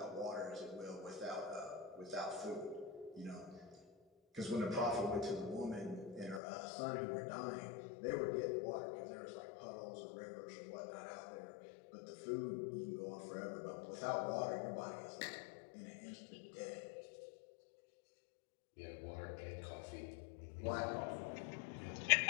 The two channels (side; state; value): right; drops out; at 6.4 s